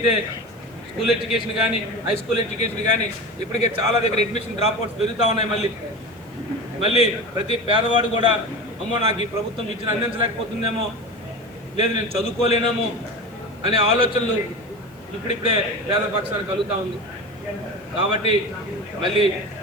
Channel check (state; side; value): noise; right; hiss, 30 dB below the sound